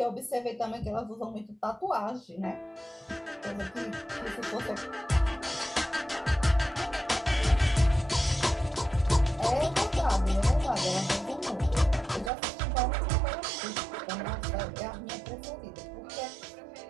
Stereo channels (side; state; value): left; drops out; at 12.3 s